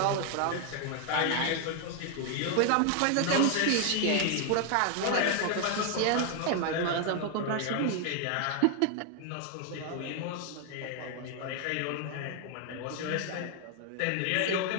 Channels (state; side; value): different; both; correlation 0.00